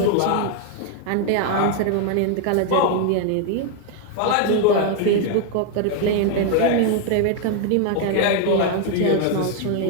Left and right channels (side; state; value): both; different; correlation 0.00